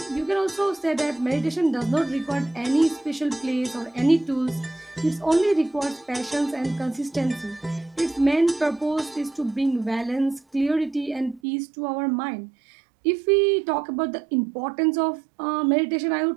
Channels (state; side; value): drops out; left; at 11.4 s